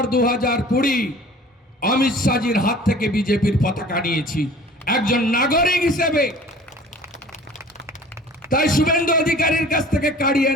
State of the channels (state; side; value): normal; both; correlation 0.46